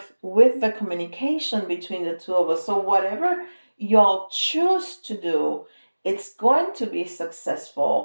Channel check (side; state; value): both; inverted; correlation -1.00